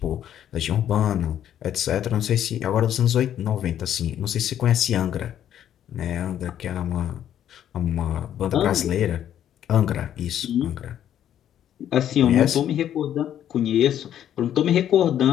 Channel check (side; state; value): right; quieter; 10.6 dB